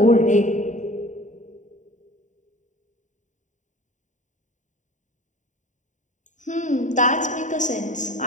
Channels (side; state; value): right; late; 0.36 ms